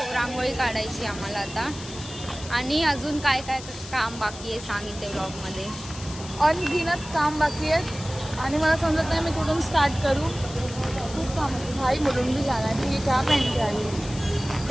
रांगोळी काढायची आम्हाला आता। आणि अजून काय काय काम बाकी आहे सांगितले व्लॉग मध्ये। अनगिनत काम बाकी आहेत, आणि मला समजत नाही मी कुठून स्टार्ट करू। खूप काम आहे भाई, मुलून भी जाना है। ये क्या पहन के आई?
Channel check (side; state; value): left; noise; hiss, 14 dB below the sound